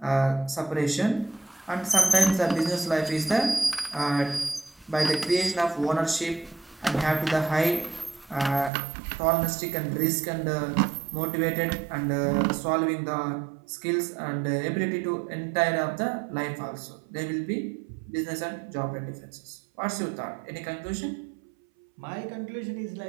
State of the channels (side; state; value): left; drops out; at 8.7 s